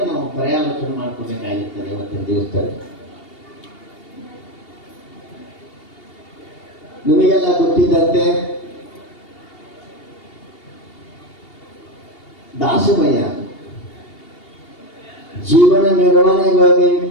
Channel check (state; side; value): late; right; 2.8 ms